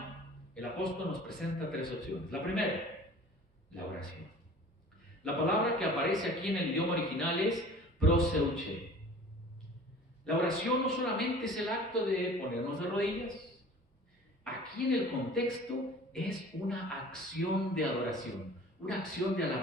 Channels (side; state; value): both; normal; correlation 0.45